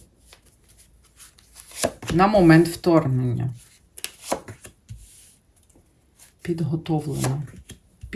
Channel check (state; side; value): identical; both; correlation 1.00